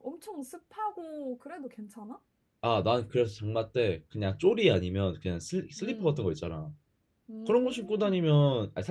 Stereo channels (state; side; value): identical; both; correlation 1.00